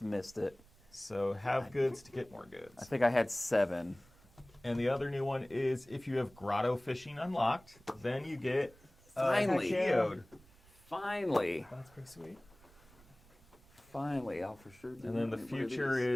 missed it. So have goods to get more I goods. think I had 7. And the other new one is if you have grotto fishing unlocked, then you get Finally. geode. Finally. That's pretty sweet. Finally, I'll for sure do And then the one of future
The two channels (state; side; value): noise; right; rumble, 26 dB below the sound